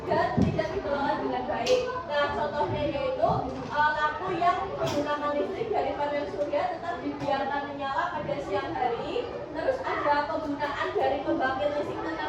tidak dikelola dengan baik. Nah, contohnya yaitu lampu yang menggunakan listrik dari panel surya tetap dibiarkan menyala pada siang hari. Terus ada penggunaan dari pembangkit listrik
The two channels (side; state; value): both; identical; correlation 1.00